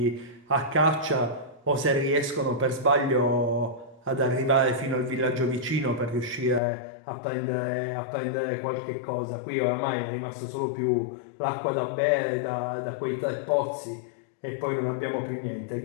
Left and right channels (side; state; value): right; drops out; at 6.6 s